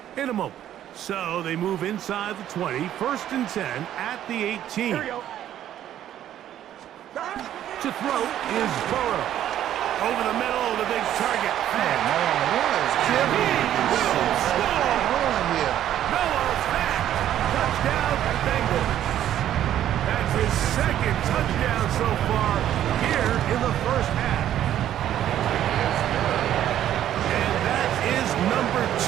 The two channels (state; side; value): quieter; left; 11.5 dB